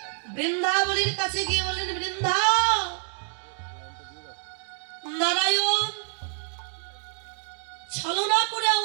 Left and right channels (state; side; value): silent; left; 60 dB below the other